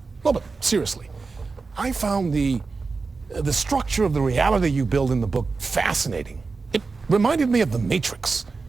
No, but seriously, I found the structure of the reality you build in the book fascinating. It reminded me of The Matrix.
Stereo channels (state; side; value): quieter; left; 4.3 dB